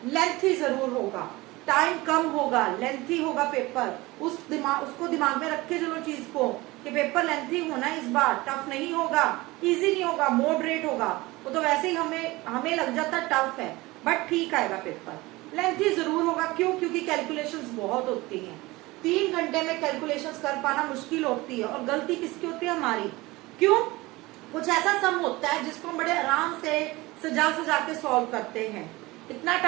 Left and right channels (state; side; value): quieter; left; 21.0 dB